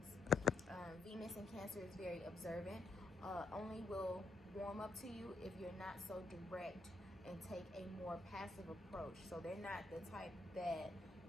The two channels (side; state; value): right; quieter; 3.1 dB